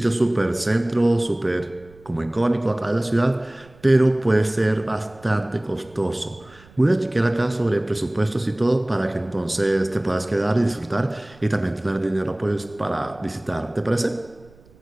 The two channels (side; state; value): right; noise; rumble, 26 dB below the sound